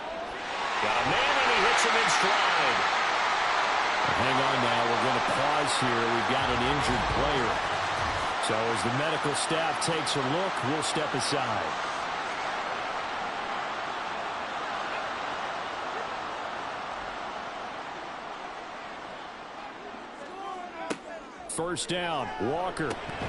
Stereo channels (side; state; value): both; identical; correlation 1.00